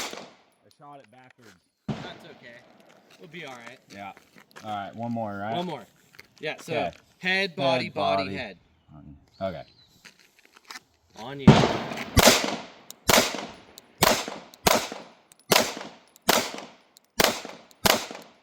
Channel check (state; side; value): identical; both; correlation 1.00